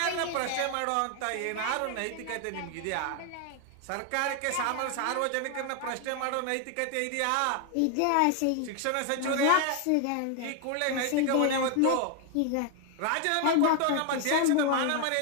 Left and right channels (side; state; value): both; different; correlation 0.01